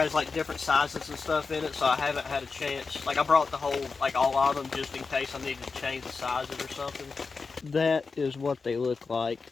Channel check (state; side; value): quieter; right; 4.6 dB